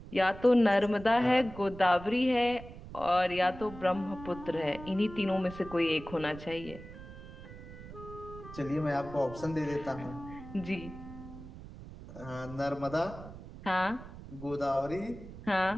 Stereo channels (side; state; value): right; noise; rumble, 14 dB below the sound